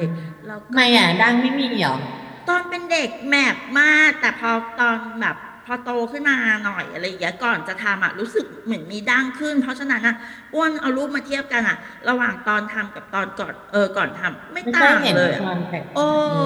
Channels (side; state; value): both; identical; correlation 1.00